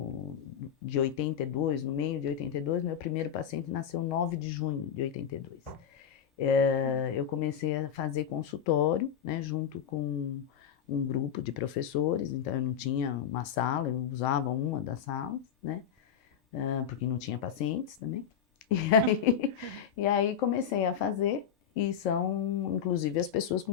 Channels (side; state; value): right; quieter; 8.4 dB